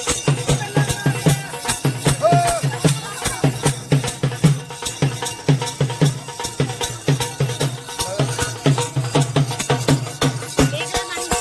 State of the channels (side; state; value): both; identical; correlation 1.00